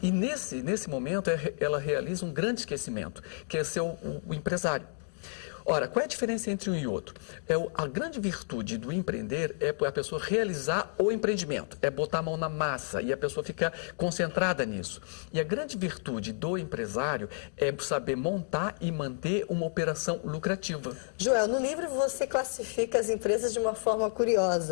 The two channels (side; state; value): right; silent; digital silence